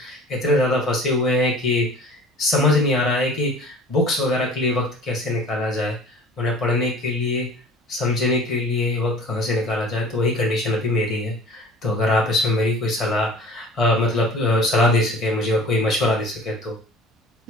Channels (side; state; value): both; normal; correlation 0.44